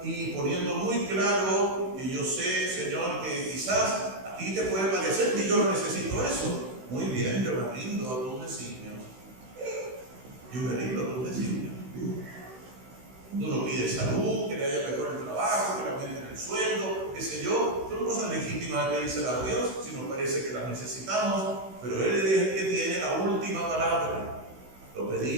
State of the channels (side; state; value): left; late; 16 ms